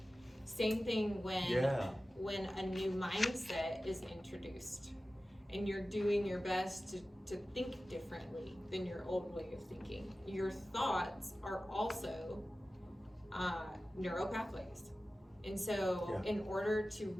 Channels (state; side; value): normal; both; correlation 0.95